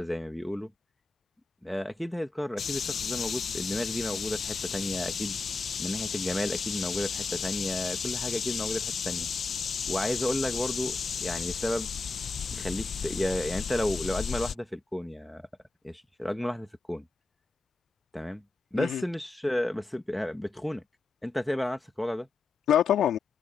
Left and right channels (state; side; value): quieter; right; 3.4 dB